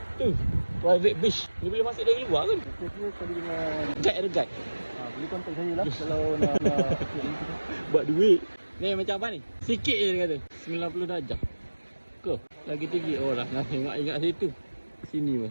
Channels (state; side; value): inverted; both; correlation -1.00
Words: tu. Private beach. Ni boleh masuk dari luar kan? Kita tadi dengan Guide ada guide. boleh kontak saya lah kalau nak buat duit. Ni macam apa ni? Sikit je dia kata. 90 darjah. Ke? Lagi tinggi. Oh lah, nak ingat situ. Sini